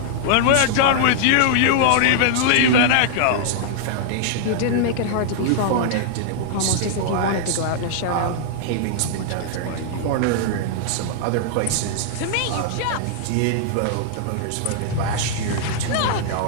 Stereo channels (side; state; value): both; different; correlation -0.01